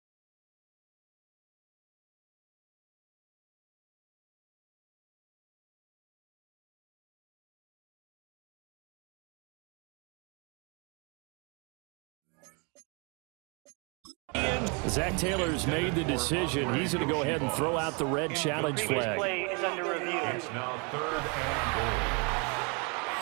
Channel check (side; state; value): left; quieter; 33.0 dB